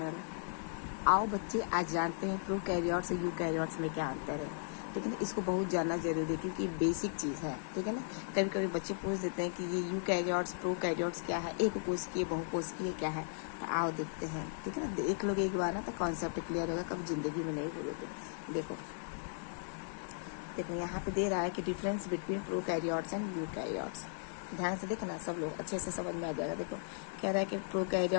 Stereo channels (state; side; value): silent; right; 53 dB below the other